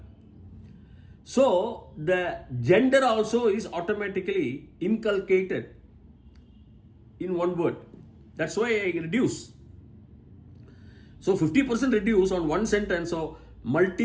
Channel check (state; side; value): identical; both; correlation 1.00